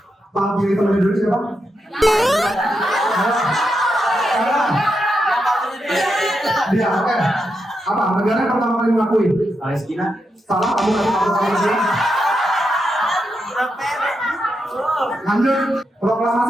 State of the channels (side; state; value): both; normal; correlation 0.85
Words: Bang pilih teman dulu siapa? Dia, oke. Apa? Negara yang pertama kali mengakui? Palestina. Salah, kamu nggak tahu Palestina. Lanjut.